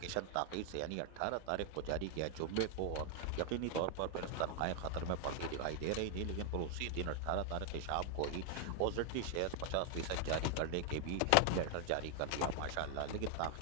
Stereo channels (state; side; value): different; both; correlation 0.00